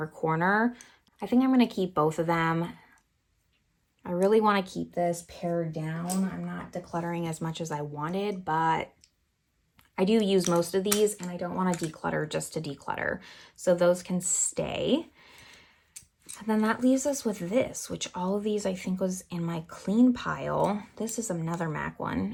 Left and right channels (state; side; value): identical; both; correlation 1.00